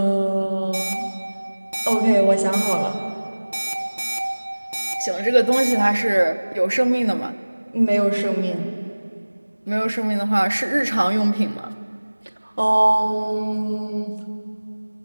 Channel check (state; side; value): inverted; both; correlation -1.00